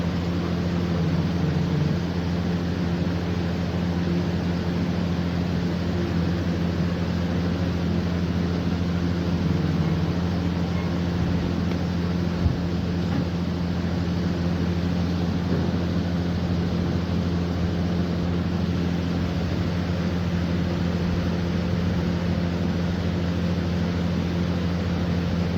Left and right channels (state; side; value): identical; both; correlation 1.00